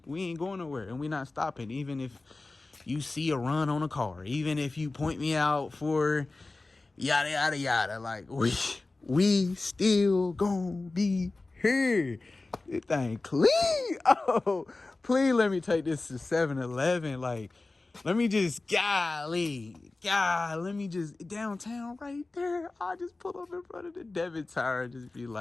ain't going nowhere, and we not stopping. Even if you see a run on a car, even if you point me out for yada yada yada, like we still gonna be here. This thing clean. Oh, please let me take this to 7-Eleven. Like, let me just let me just downtown right there. I just pull up in front of the debit tower and just be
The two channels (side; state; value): right; quieter; 3.3 dB